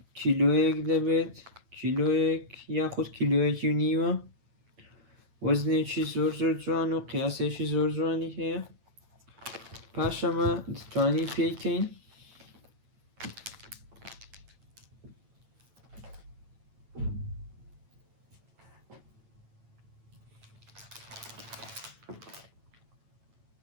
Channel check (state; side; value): late; left; 8.9 ms